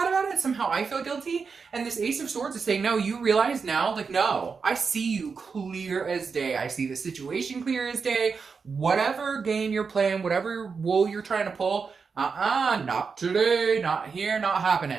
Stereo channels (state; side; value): quieter; left; 5.3 dB